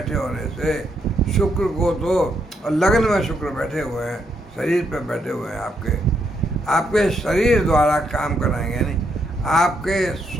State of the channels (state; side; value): normal; both; correlation 0.77